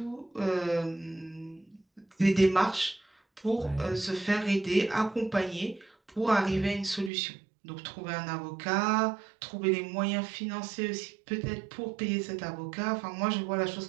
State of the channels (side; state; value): left; drops out; at 7.1 s